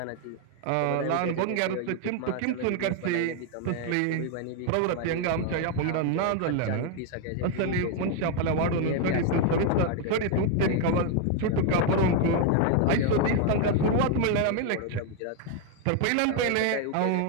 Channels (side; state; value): both; different; correlation 0.01